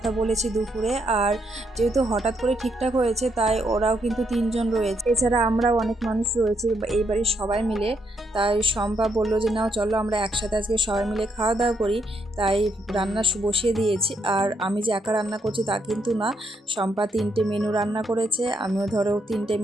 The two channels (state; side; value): normal; both; correlation 0.77